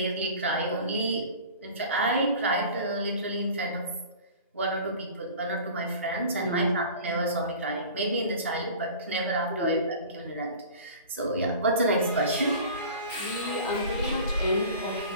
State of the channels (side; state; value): both; inverted; correlation -0.40